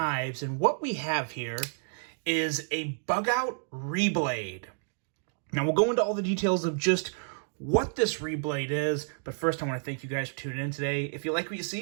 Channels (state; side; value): silent; left; digital silence